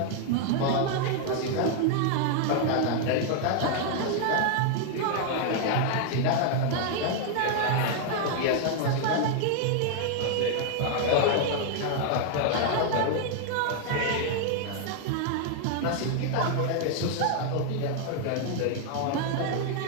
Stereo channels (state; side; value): different; both; correlation 0.00